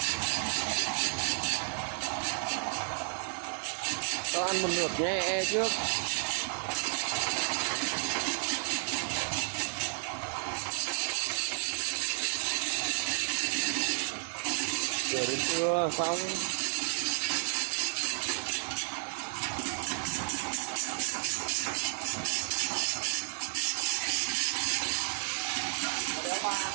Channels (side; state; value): left; silent; digital silence